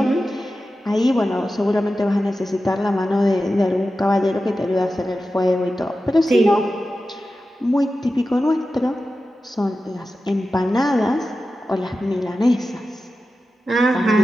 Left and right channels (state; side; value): normal; both; correlation 0.93